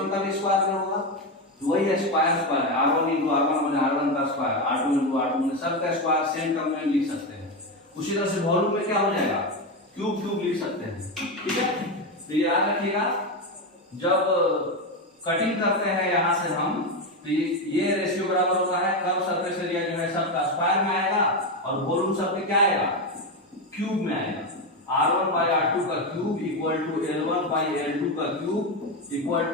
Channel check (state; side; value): normal; both; correlation 0.12